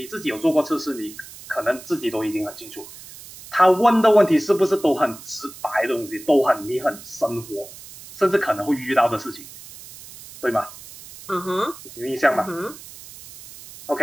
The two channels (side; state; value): right; noise; hiss, 17 dB below the sound